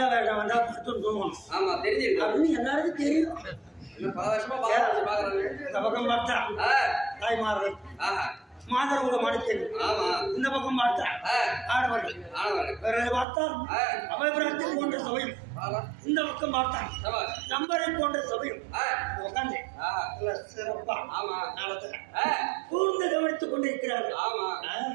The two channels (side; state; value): left; drops out; at 13.2 s